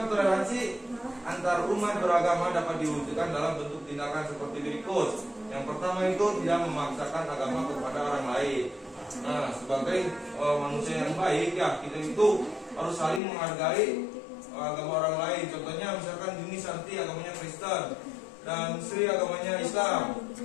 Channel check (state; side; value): drops out; right; at 13.2 s